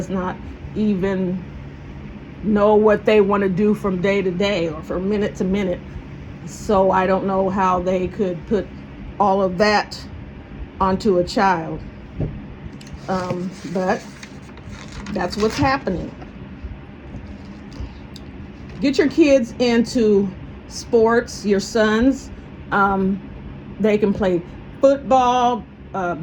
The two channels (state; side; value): identical; both; correlation 1.00